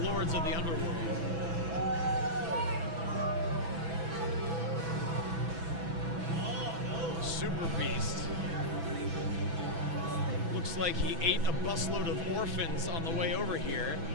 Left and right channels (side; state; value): left; late; 6.0 ms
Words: of the Underworld. Super Beast. Looks like he ate a busload of orphans on the way over here.